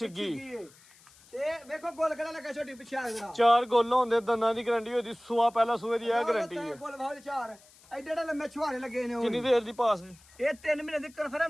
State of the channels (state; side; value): noise; left; hiss, 26 dB below the sound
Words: ਤੇ ਵੇਖੋ ਗੋਲ ਕਿਹੜਾ ਲੱਗਾ ਛੋਟੀ ਪਿੱਛੇ ਆ ਜਰਾ ਚਾਰ ਗੋਲ ਹੁੰਦੇ ਦੰਦਾਂ ਦੀ ਗਰੰਟੀ ਹੋਦੀ ਸੂਆ ਪਹਿਲਾ ਸੂਏ ਦੀ ਇਹ ਗਰੰਟੀ ਹੈ ਗੋਲ ਬਾਹਰ ਚਾਰ ਐਡੇ ਐਡੇ ਲੰਮੇ ਛੁਹਾਰੇ ਲੱਗੇ ਨੇ ਕਿੰਨੀ ਦੇਰ ਦੀ ਪਾਸ ਨੇ ਇਹ 3 ਮਹੀਨੇ ਦੀ